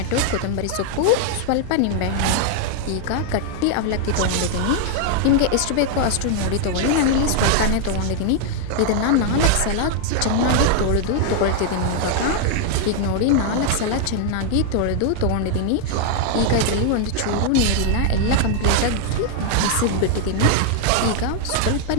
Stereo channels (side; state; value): both; different; correlation 0.00